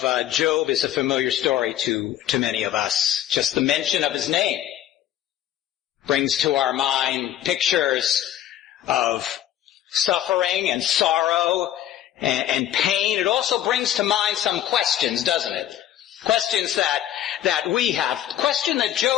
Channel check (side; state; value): right; quieter; 11.7 dB